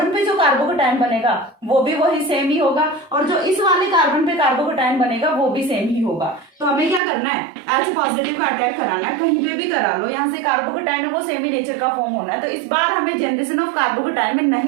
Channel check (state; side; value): drops out; left; at 7.0 s